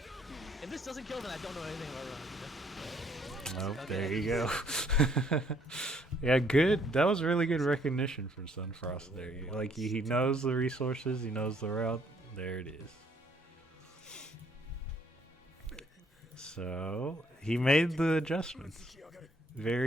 If this doesn't kill, then I don't know anything about Ron. Oh, there you go. Yeah, good. That was really good recognition from Sunfrost there. Like, he knows the resources, he knows the route. There it is. So, he made the adjustments.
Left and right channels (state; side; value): normal; both; correlation 0.66